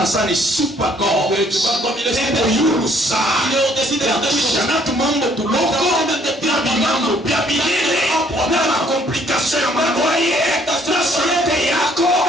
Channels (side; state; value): both; normal; correlation 0.63